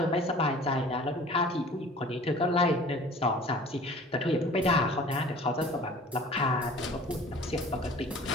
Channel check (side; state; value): both; normal; correlation 0.46